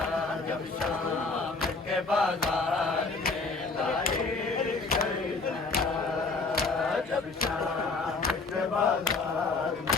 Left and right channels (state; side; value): quieter; right; 4.0 dB